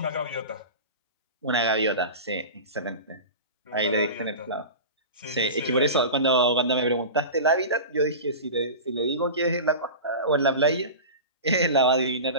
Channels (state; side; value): inverted; both; correlation -0.30